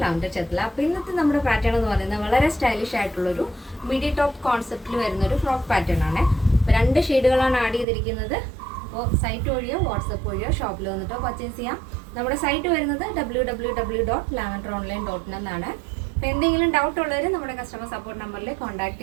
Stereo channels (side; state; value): left; drops out; at 7.9 s